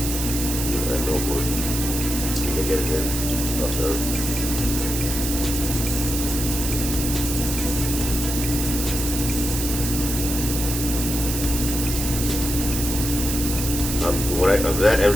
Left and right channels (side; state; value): right; noise; hiss, 3 dB below the sound